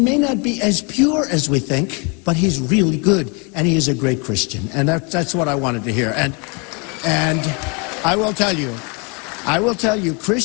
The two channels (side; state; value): right; quieter; 33.0 dB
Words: not be as pure as we think, but he's really good, and he is a great Christian. And that's what I wanted to hear. And I will tell you,